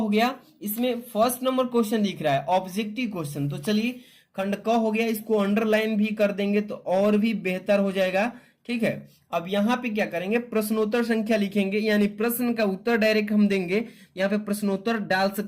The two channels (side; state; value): both; identical; correlation 1.00